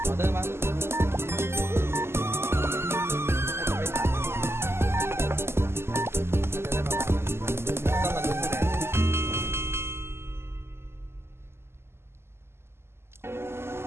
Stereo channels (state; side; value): late; left; 0.12 ms